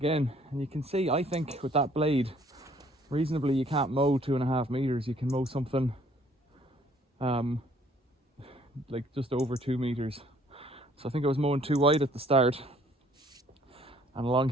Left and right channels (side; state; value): both; normal; correlation 0.60